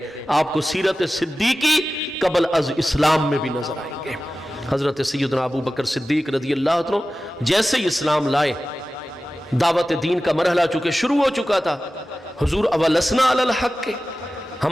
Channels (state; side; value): normal; both; correlation 0.95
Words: آپ کو سیرت صدیقی قبل از اسلام میں بھی نظر آئیں گے۔ حضرت سیدنا ابو بکر صدیق رضی اللہ عنہ جیسے ہی اسلام لائے، دعوت دین کا مرحلہ چونکہ شروع ہو چکا تھا، حضور اولسنا علی الحق کے،